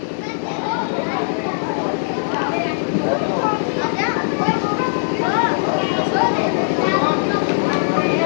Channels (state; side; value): silent; right; digital silence